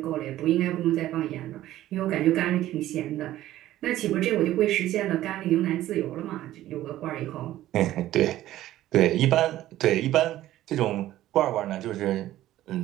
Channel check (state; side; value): quieter; left; 14.2 dB